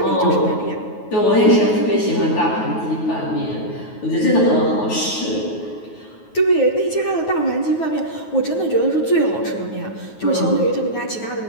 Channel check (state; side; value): late; right; 9.4 ms